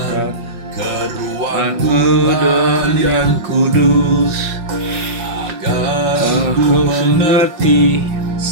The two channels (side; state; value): left; late; 5.5 ms